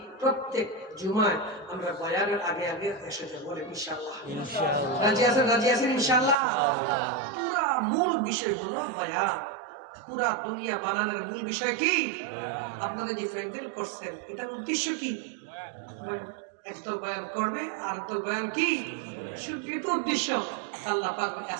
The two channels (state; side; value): drops out; left; at 6.4 s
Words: প্রত্যেক জুমায় আমরা বয়ানের আগে আগে এসে যাব। বলেন ইনশাআল্লাহ। রাজি আছেন? রাজি আছেন ইনশাআল্লাহ। পুরা মূল বিষয় হলো বয়ান। পুরা দুনিয়া বানানোর মূল বিষয় কি? আপনাদের যে প্যান্ডেল করছেন এটার উদ্দেশ্য কি? একদল বয়ান করবে আর একদল বয়ান কি? শুধু এটা উদ্দেশ্য। আল্লাহ পাক